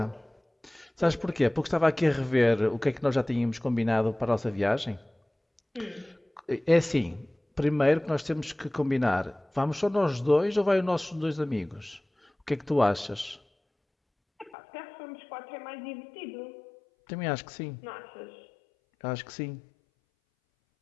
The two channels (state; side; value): drops out; right; at 14.5 s